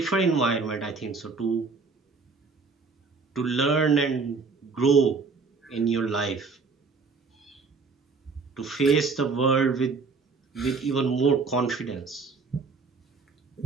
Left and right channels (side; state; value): left; quieter; 4.5 dB